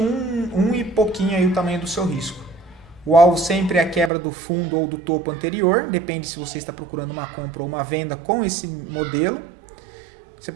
e pouquinho aí o tamanho do seu risco. O alvo sempre é a quebra do fundo ou do topo anterior, depende se você está procurando uma compra ou uma venda com esse modelo. Você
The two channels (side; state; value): left; drops out; at 4.1 s